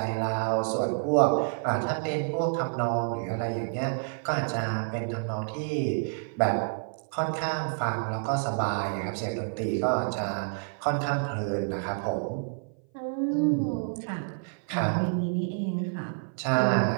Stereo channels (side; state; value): left; silent; 57 dB below the other